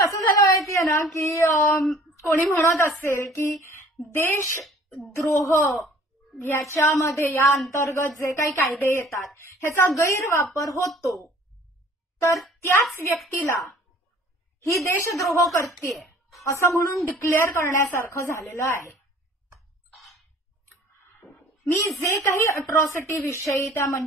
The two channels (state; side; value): normal; both; correlation 0.52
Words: झालं माहितीये ना की कोणी म्हणत असेल की देशद्रोह याच्यामध्ये या अंतर्गत जे काही कायदे येतात ह्याचा गैरवापर होतो, तर त्याच व्यक्तीला ही देशद्रोह करतेय असं म्हणून डिक्लेअर करण्यासारखं झालेलं आहे. मी जे काही अट्रॉसिटी विषयी त्या